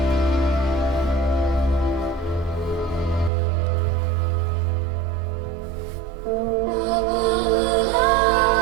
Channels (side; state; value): left; drops out; at 3.3 s